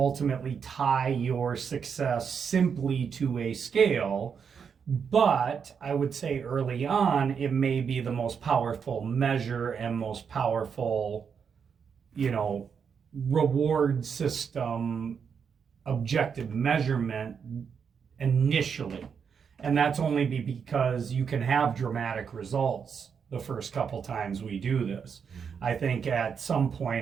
tie your success simply to a scale, but I would say early on, it may be the most powerful measure and most powerful, reward system, objective measurement initially. And that's only because you can have dramatic results the first couple times we do this. I think at some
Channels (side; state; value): left; quieter; 6.7 dB